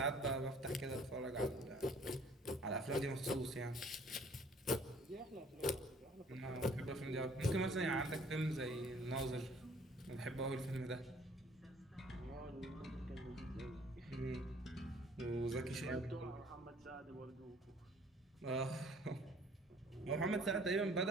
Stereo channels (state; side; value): normal; both; correlation 0.55